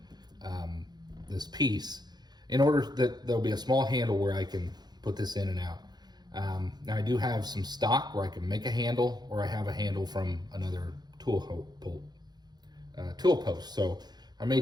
this piece, in order that there'll be a small handle where I can put this in and out. Now I do have some stock where I can make a handle, or I have a handle from another tool post. So I may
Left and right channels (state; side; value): late; left; 0.20 ms